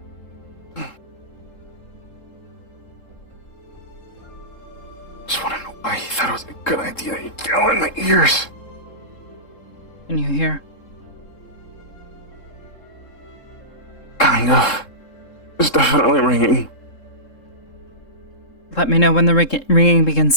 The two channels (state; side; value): late; right; 3.7 ms